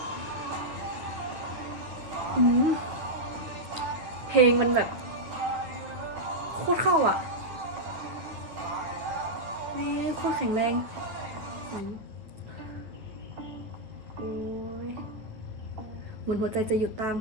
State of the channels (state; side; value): late; left; 9.1 ms